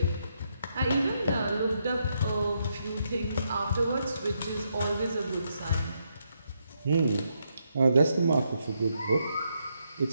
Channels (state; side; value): inverted; both; correlation -0.79